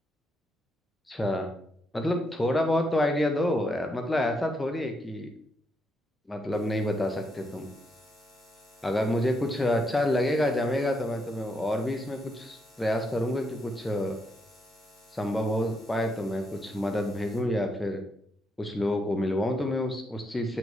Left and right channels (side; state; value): both; normal; correlation 0.78